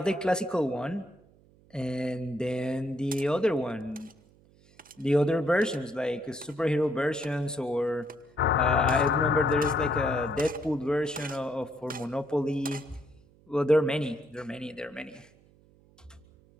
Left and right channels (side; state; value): right; noise; hum, 29 dB below the sound